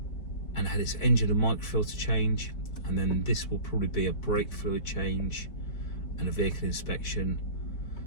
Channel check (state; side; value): late; right; 4.9 ms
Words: and had its engine and microfilter change. And then this will probably be a brake fluid change and a vehicle inspection.